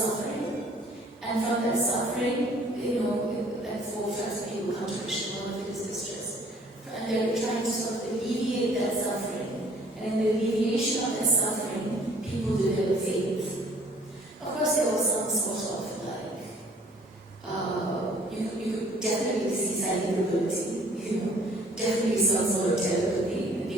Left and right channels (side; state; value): both; normal; correlation 0.57